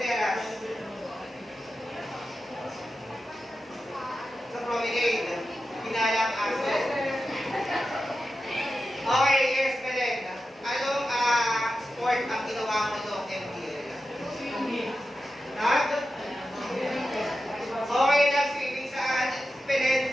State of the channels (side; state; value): both; normal; correlation 0.91